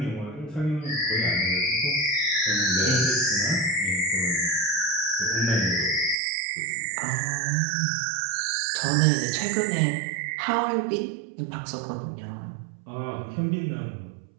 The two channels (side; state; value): left; drops out; at 6.2 s